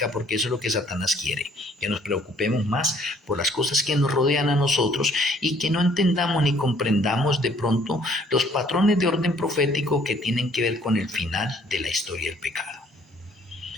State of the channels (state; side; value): normal; both; correlation 0.61